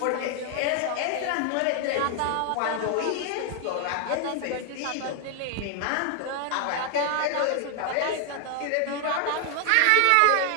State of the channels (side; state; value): both; different; correlation 0.00